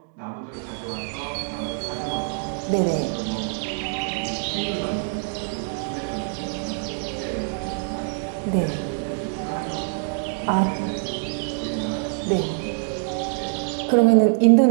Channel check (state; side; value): silent; left; 62 dB below the other